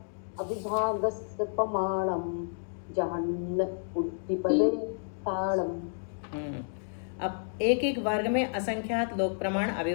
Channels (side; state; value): right; silent; digital silence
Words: अविभागस्य प्रमाणं जहन्न उड्डीपदेशाणम्। अब एक एक वर्ग में असंख्यात लोक प्रमाण